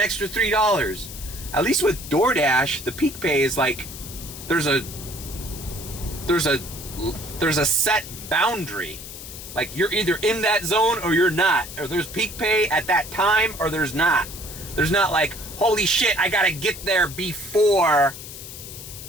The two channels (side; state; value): left; noise; hiss, 12 dB below the sound